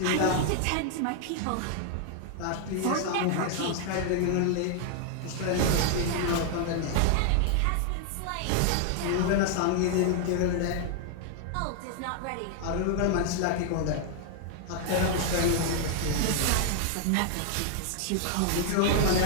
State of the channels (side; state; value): both; different; correlation 0.00